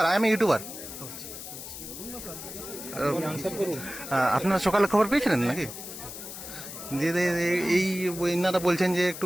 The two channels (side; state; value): left; noise; hiss, 11 dB below the sound